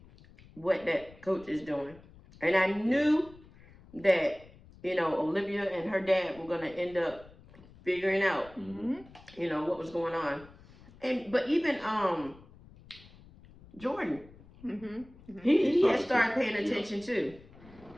what that coach is doing. And I knew that, you know, Olivia and her dad were going to end up figuring out, you know, what was going on. But even Jordan, he had started paying attention too.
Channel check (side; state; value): left; noise; rumble, 23 dB below the sound